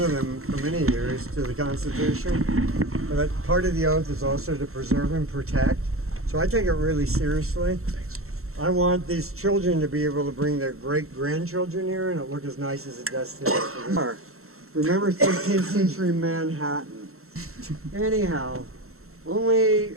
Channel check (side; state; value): left; late; 0.63 ms